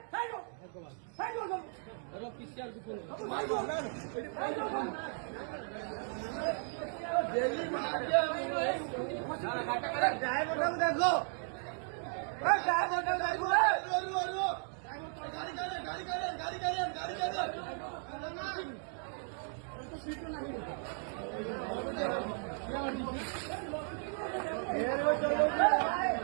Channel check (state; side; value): silent; left; 54 dB below the other